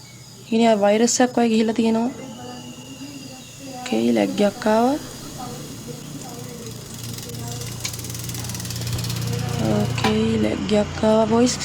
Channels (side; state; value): both; identical; correlation 1.00